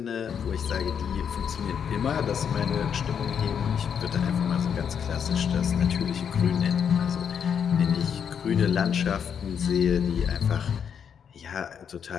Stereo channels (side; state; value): right; quieter; 7.6 dB